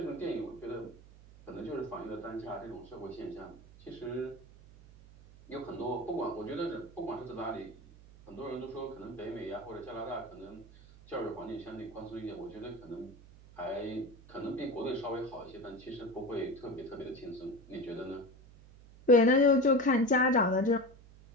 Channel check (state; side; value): noise; right; hum, 21 dB below the sound